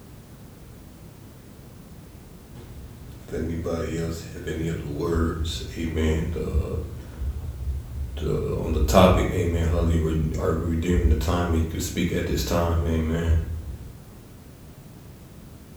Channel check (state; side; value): identical; both; correlation 1.00